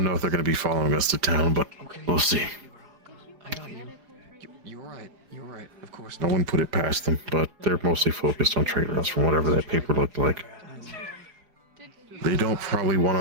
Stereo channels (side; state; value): left; late; 4.9 ms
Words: know if they're going to be following us to town, but we'll see. I got you. You're right. You're right. Of course. No one put it past them, but they're mostly focused on trade routes from whatever that paper looked like. They don't probably want